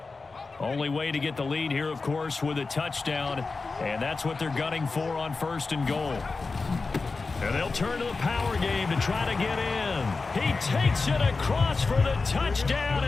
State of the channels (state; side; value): quieter; right; 4.0 dB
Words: Only way to get the lead here, of course, with a touchdown, and that's what they're gunning for on 1st and goal. And they'll turn to the power game to try to get in. He takes it across for the touchdown,